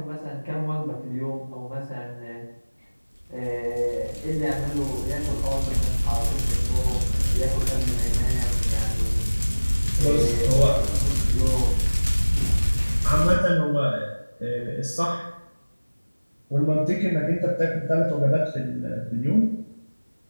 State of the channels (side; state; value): both; inverted; correlation -1.00